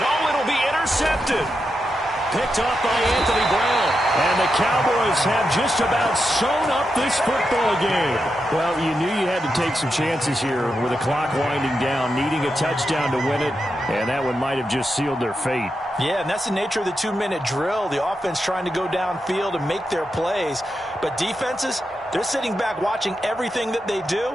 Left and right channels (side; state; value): both; normal; correlation 0.87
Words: it'll be intercepted. Picked off by Anthony Brown. And the Cowboys have just about sewn up this football game. Well, you knew you had to take some chances here with the clock winding down, needing a touchdown to win it, and that one might have just sealed their fate. Yeah, and that's the nature of the 2-minute drill. The offense trying to go downfield and make their plays. But defenses, they're sitting back watching everything that they